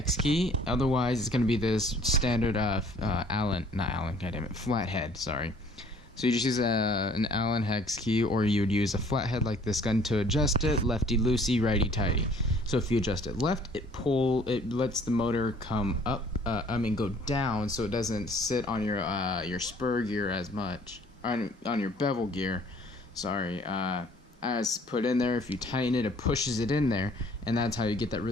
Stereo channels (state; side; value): normal; both; correlation 0.56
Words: key. Otherwise, it's going to be this standard flathead, sorry. So you just use an Allen hex key, or you would use a flathead like this gun to adjust it, lefty loosey, righty tighty. So if you adjust it left, it lets the motor come up, go down, so it doesn't sit on your spur gear as much, on your bevel gear, sorry, as put in there. If you tighten it, it pushes it in there, and that's how you get that